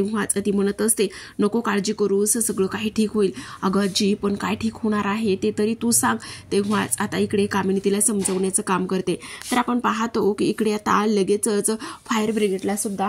ती म्हणत असते, नको काळजी करूस, सगळं काही ठीक होईल. अगं आजी पण काय ठीक होणार आहे ते तरी तू सांग. तेव्हाच आता इकडे कामिनी तिला समजवण्याचं काम करते. तर आपण पाहतो की इकडे आता लगेचच फायर ब्रिगेडला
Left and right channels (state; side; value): identical; both; correlation 1.00